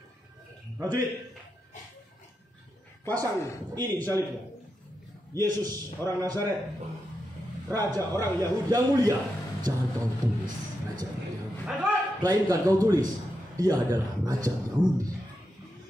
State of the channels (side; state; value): both; normal; correlation 0.86